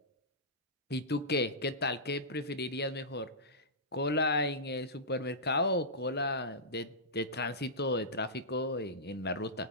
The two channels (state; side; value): normal; both; correlation -0.16